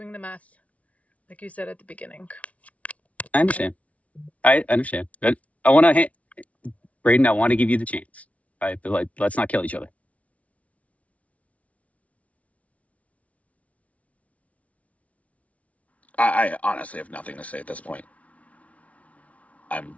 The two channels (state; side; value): late; right; 0.066 ms